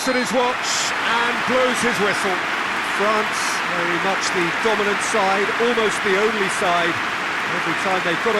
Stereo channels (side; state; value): both; identical; correlation 1.00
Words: at his watch and blows his whistle. France, very much the dominant side, almost the only side. Every time they got